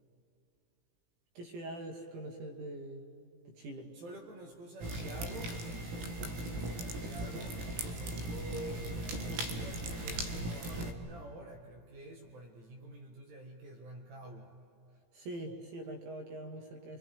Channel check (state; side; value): late; left; 18 ms